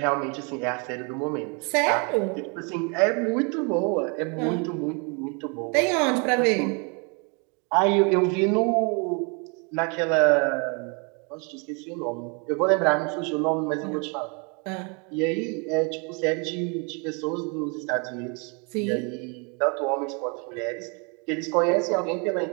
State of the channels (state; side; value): quieter; left; 34.1 dB